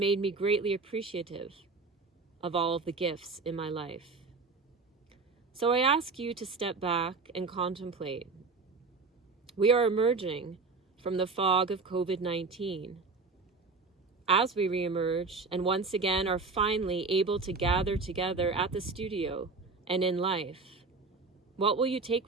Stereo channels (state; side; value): quieter; left; 4.2 dB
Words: me greatly appreciative of all of the gifts in my life. So I ask you to step back and contemplate. We are emerging from the fog of COVID-19. As we reemerge and once again are finally able to gather together at the studio and in life, what will you